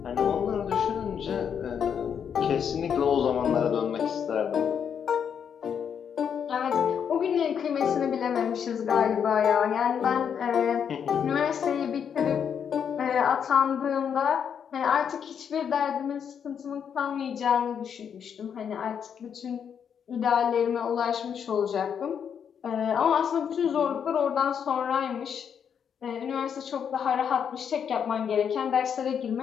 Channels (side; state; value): right; quieter; 7.7 dB